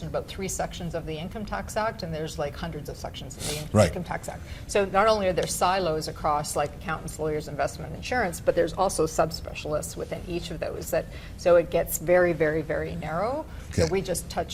about 3 sections of the Income Tax Act, and there's like hundreds of sections of the Income Tax Act. So not only are there silos across like accountants, lawyers, investment, insurance, but there's also subspecialists within each of those. So it gets very, very, very narrow. So we just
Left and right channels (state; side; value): identical; both; correlation 1.00